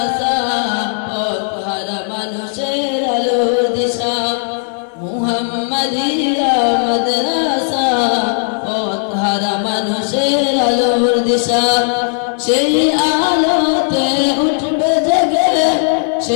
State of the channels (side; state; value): right; silent; 67 dB below the other